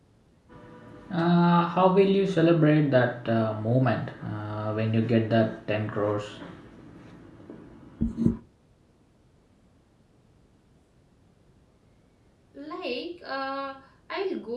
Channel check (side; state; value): both; identical; correlation 1.00